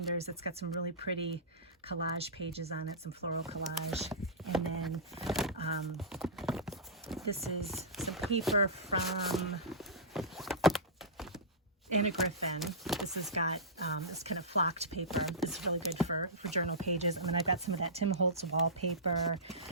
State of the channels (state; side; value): normal; both; correlation -0.17